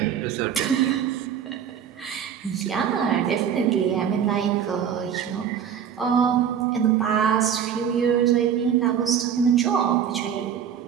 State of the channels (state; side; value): quieter; left; 8.4 dB